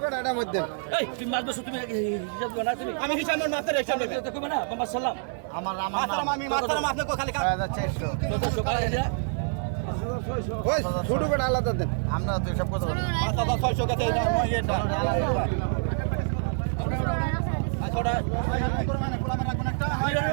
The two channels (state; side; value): silent; left; digital silence